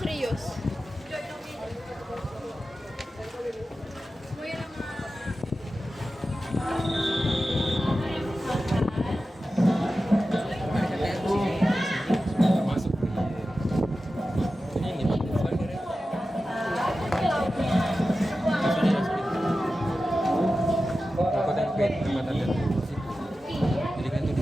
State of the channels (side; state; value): both; normal; correlation 0.93